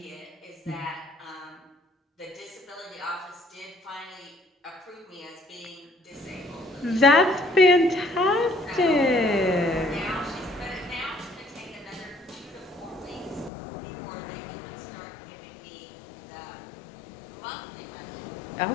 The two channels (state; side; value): drops out; right; at 13.5 s